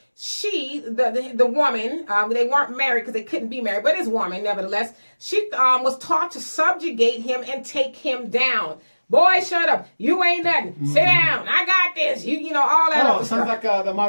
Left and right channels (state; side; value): inverted; both; correlation -1.00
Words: she, the woman, they weren't married because they couldn't be married, but his woman, nevertheless, she was taught to subjugate him and take him down. Boy, shut up. You ain't nothing. Sit down. I got this. You know, all that other sounds stuff. like the